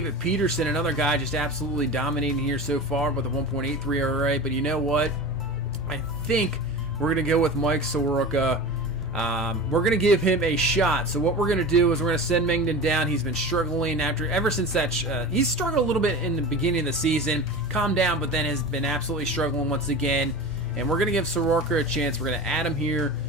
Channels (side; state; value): both; normal; correlation 0.32